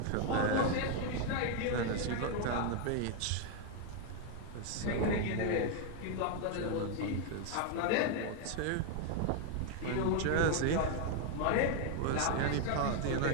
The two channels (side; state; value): both; different; correlation 0.01